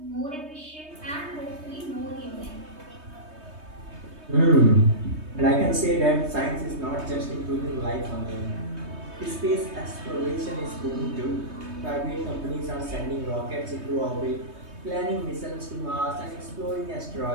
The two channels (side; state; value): left; late; 3.2 ms